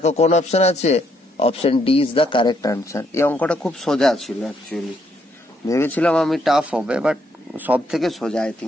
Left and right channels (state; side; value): normal; both; correlation 0.73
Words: কোন অপশন আছে, option D is the correct answer. এই অঙ্কটা খুব সোজা ছিল অ্যাকচুয়ালি, ভেবেছিলাম আমি টাফ হবে, বাট সব থেকে সোজা আই